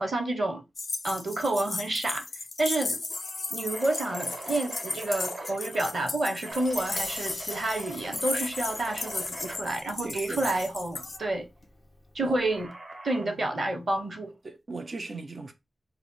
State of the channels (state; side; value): normal; both; correlation 0.88